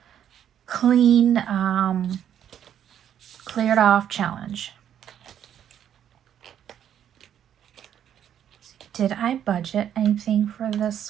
off challenge. Did I budget anything for this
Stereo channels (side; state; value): left; quieter; 9.8 dB